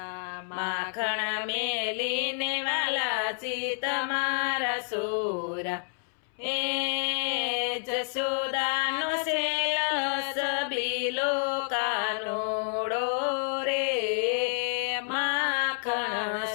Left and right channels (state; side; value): silent; right; 59 dB below the other